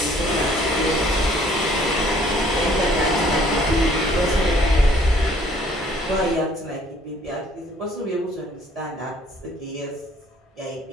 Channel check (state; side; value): normal; both; correlation 0.59